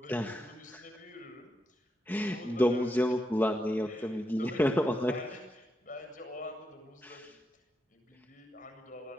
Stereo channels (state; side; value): normal; both; correlation 0.84